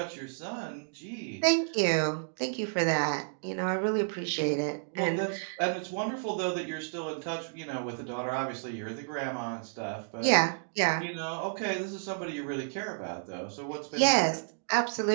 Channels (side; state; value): left; silent; digital silence